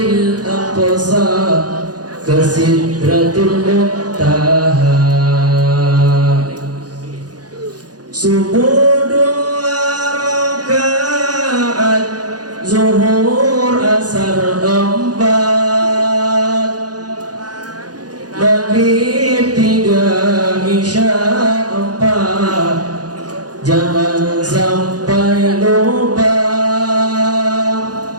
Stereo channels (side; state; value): left; late; 0.69 ms